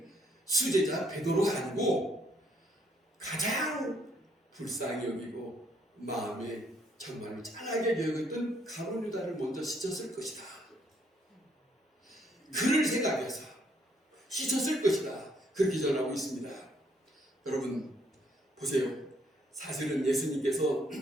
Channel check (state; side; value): normal; both; correlation 0.69